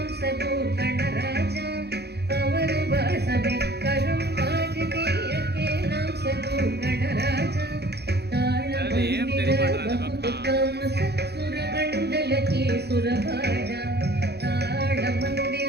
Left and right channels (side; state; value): left; late; 0.48 ms